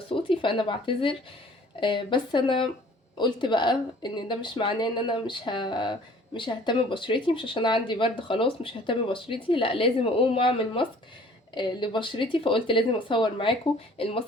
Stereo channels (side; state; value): both; normal; correlation 0.53